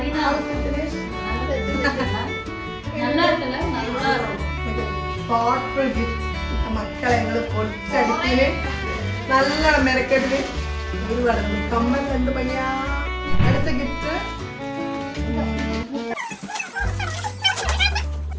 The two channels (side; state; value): both; identical; correlation 1.00